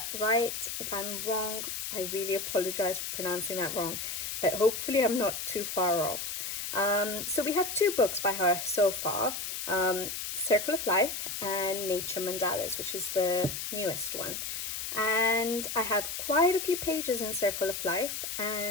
right. If I'm wrong, I really apologize for pronouncing that wrong, but hopefully I'm not too far off. So we have two books by her so far, Circle of Life and Nature Mandalas, which is the newest one. And I have quite a few pages in Circle of Life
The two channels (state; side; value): noise; left; hiss, 4 dB below the sound